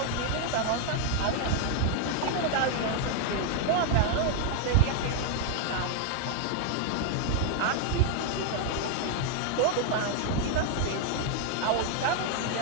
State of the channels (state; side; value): different; both; correlation 0.00